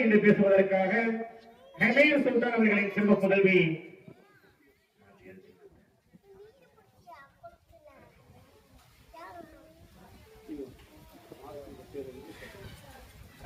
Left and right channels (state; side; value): identical; both; correlation 1.00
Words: என்று பேசுவதற்காக ஹமீர் சுல்தான் அவர்களின் செல்வ புதல்வி